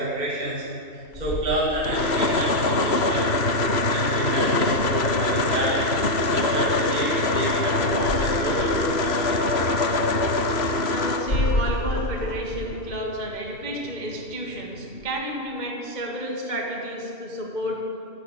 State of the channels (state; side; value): late; right; 3.0 ms